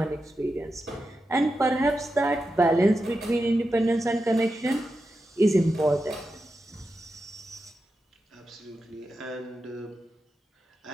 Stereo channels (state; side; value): normal; both; correlation 0.89